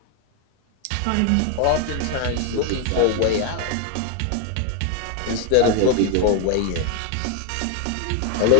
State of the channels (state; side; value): different; both; correlation 0.01